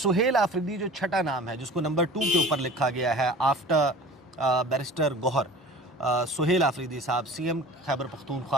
आफरीदी जो छठा नाम है, जिसको नंबर 2 के ऊपर लिखा गया है आफ्टर बैरिस्टर गौहर, सुहेल आफरीदी साहब CM खैबर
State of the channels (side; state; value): both; normal; correlation 0.41